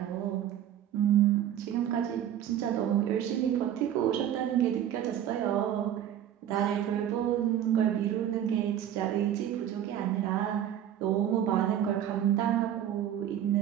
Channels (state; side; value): quieter; left; 10.6 dB